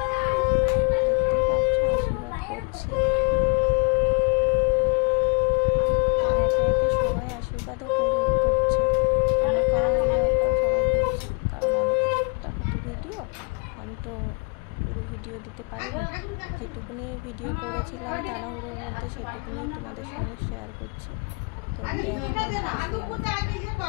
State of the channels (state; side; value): quieter; right; 32.8 dB